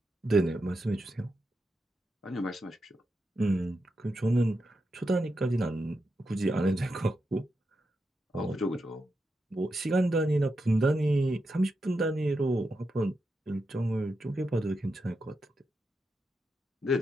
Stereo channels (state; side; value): normal; both; correlation 0.87